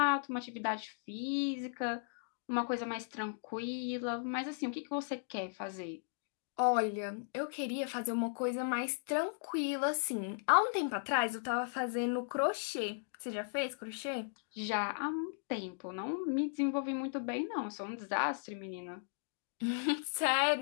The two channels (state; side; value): silent; right; digital silence